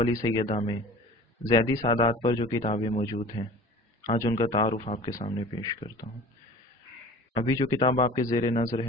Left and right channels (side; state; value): both; normal; correlation 0.42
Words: سیدہ میں زیدی سادات پر جو کتابیں موجود ہیں، آج ان کا تعارف آپ کے سامنے پیش کرتا ہوں۔ ابھی جو کتاب آپ کے زیر نظر